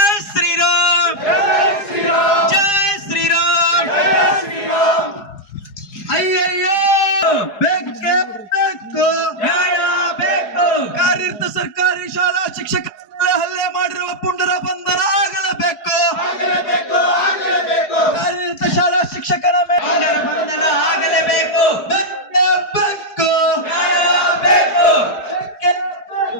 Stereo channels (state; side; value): late; right; 4.7 ms